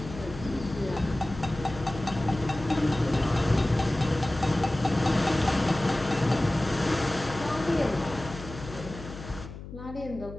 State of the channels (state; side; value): noise; left; hum, 12 dB below the sound